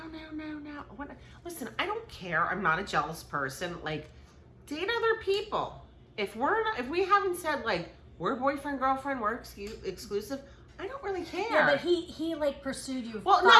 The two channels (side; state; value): both; identical; correlation 1.00